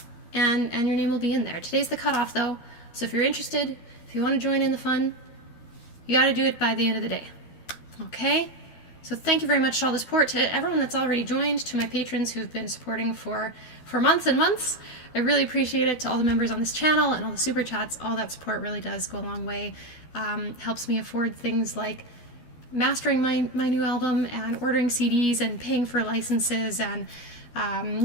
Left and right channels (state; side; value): late; right; 13 ms